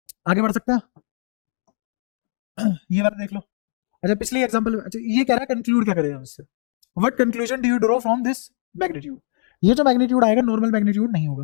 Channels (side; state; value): right; silent; digital silence